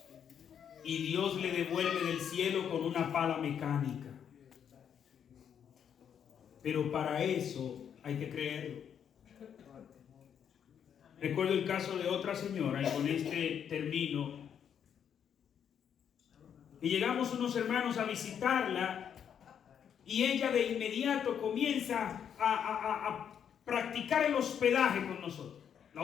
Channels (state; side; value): quieter; right; 8.4 dB